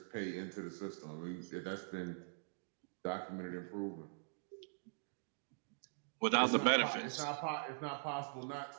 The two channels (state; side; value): silent; left; digital silence